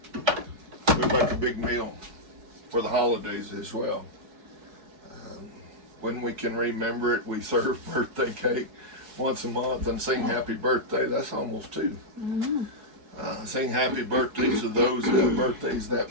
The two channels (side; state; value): left; late; 4.7 ms